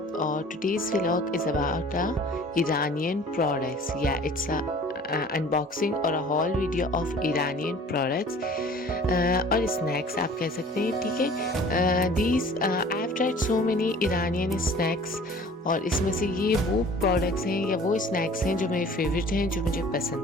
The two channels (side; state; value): both; normal; correlation 0.47